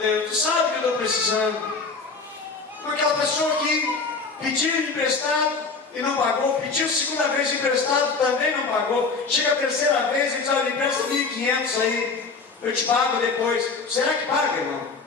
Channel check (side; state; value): right; quieter; 4.4 dB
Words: tu sabe que eu estou precisando. Com aquela pessoa que pediu emprestado e não pagou, pediu segunda vez emprestado, também não pagou. Chega a terceira vez e diz: olha, empresta 1.500 aí, eu te pago depois. Será que paga, irmão?